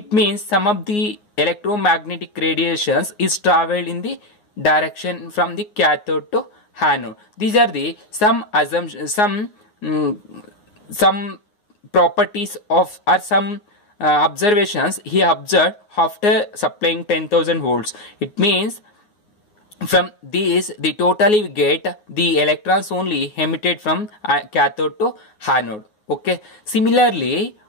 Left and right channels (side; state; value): right; late; 9.6 ms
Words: means some of the electromagnetic radiations is traveled in the direction from the cathode to anode. These are the some assumptions, some properties of or some observations he observed after supplying 10,000 volts. It means from these the totally we get the electrons only emitted from cathode to anode. Okay. Similarly,